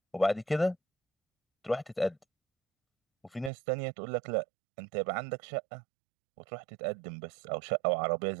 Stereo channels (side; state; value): left; drops out; at 3.5 s